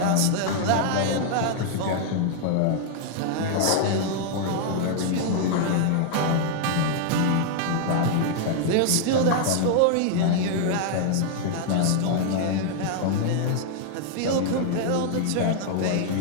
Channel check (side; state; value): both; different; correlation 0.00